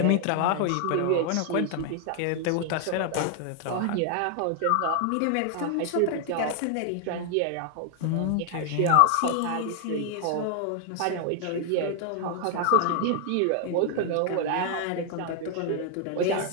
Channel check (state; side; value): different; both; correlation 0.00